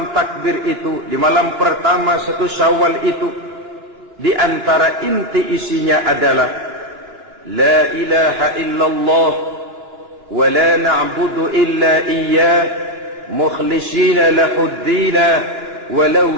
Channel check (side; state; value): left; late; 2.9 ms